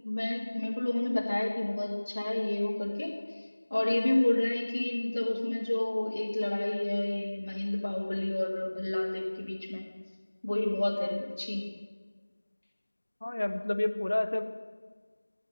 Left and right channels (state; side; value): inverted; both; correlation -1.00